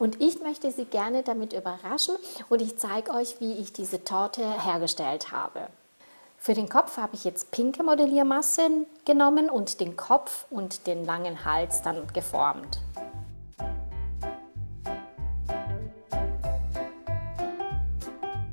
ich möchte sie gerne damit überraschen und ich zeige euch, wie ich diese Torte hergestellt habe. Für den Kopf habe ich jetzt pinke Modelliermasse genommen und den Kopf und den langen Hals dann geformt.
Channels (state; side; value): inverted; both; correlation -1.00